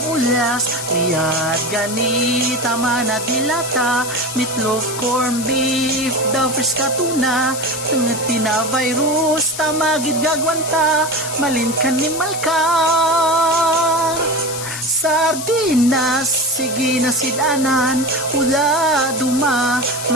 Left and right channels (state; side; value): noise; left; hiss, 8 dB below the sound